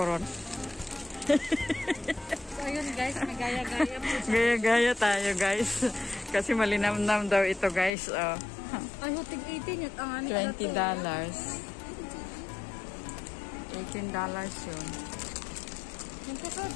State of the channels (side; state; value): right; drops out; at 7.9 s